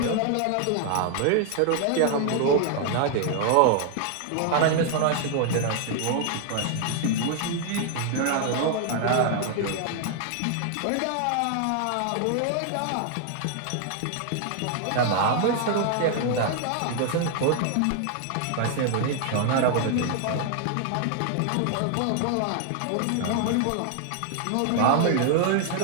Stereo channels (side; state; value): both; different; correlation 0.00